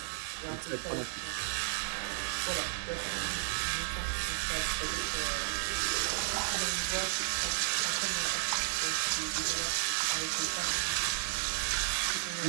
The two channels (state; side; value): silent; left; digital silence